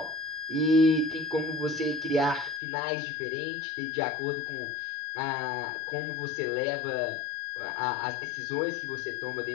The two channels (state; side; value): drops out; right; at 2.6 s